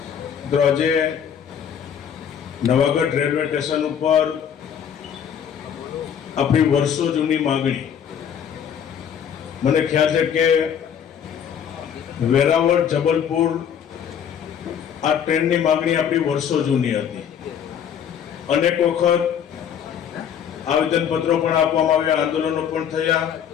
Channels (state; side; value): quieter; right; 8.4 dB